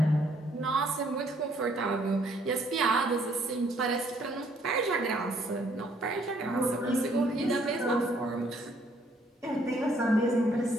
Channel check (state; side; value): normal; both; correlation 0.66